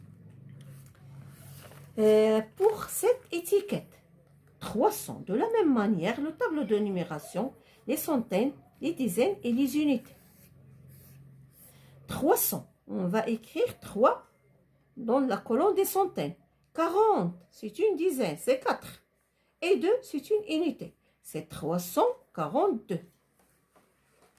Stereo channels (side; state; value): both; identical; correlation 1.00